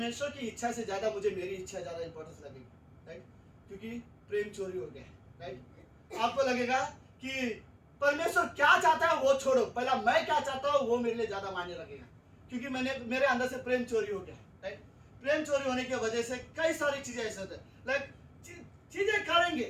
की इच्छा से ज्यादा मुझे मेरी इच्छा ज्यादा इंपॉर्टेंस लगेगी, राइट, क्योंकि प्रेम चोरी हो गया, राइट। आपको लगेगा कि परमेश्वर क्या चाहता है वो छोड़ो, पहला मैं क्या चाहता हूँ वो मेरे लिए ज्यादा मायने लगेगा, क्योंकि मेरे अंदर से प्रेम चोरी हो गया, राइट। प्रेम चोरी होने की वजह से कई सारी चीजें ऐसे होते हैं, लाइक चीजें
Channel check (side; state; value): both; identical; correlation 1.00